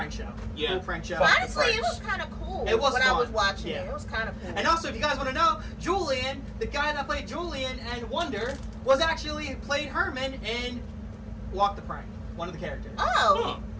show. Yeah. Cool prank show. Honestly, it was kind of cool. It was when I was fun. watching Yeah. it. It was kind of cool. And also, if you guys want to know, Julian, the guy that played Julian and Wonder, was actually played Herman in Walk the Prank, one of the characters. Oh,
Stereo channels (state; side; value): identical; both; correlation 1.00